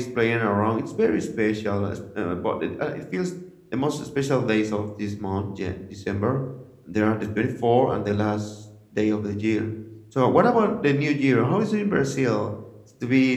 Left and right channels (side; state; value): both; identical; correlation 1.00